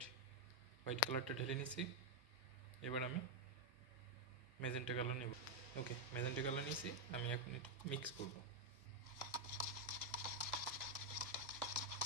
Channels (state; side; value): normal; both; correlation 0.00